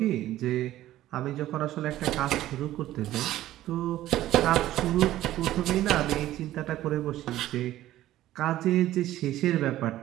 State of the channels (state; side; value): quieter; left; 14.3 dB